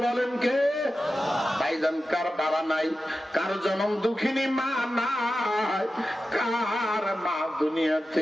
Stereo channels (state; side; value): normal; both; correlation 0.93